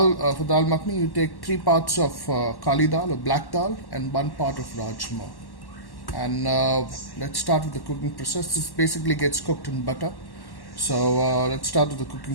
makhani, you take 3 parts of kali dal or black dal and 1 part of rajma. And let's start with the cooking process. This basically gets cooked in butter. So let's start with the cooking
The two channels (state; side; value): late; right; 1.1 ms